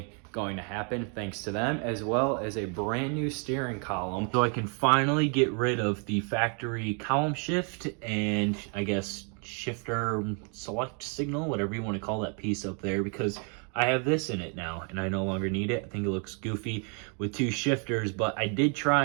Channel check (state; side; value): quieter; left; 38.8 dB